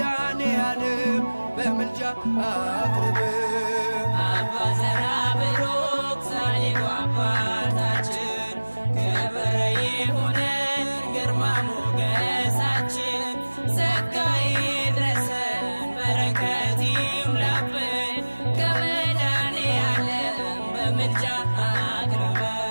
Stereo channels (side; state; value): both; inverted; correlation -1.00